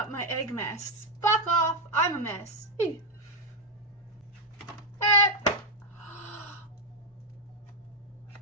my egg mess. Fuck off, I'm a mess. Ew.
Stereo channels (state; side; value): normal; both; correlation 0.00